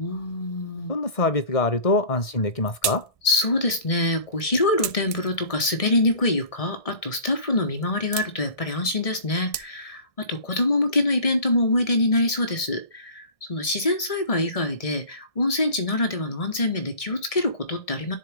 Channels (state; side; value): late; right; 1.6 ms